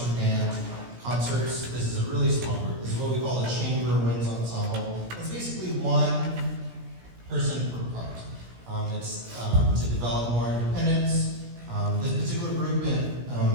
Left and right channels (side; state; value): left; late; 17 ms